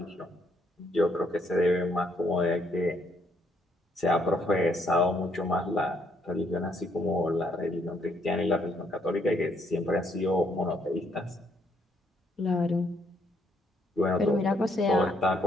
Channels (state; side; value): normal; both; correlation 0.71